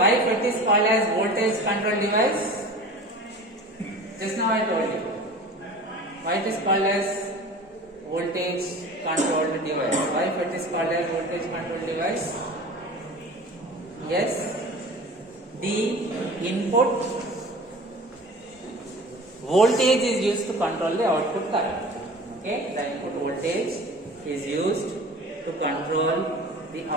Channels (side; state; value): both; normal; correlation 0.39